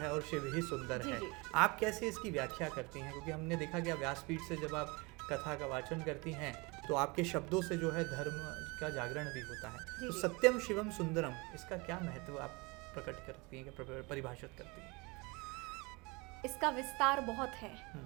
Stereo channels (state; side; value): quieter; left; 26.8 dB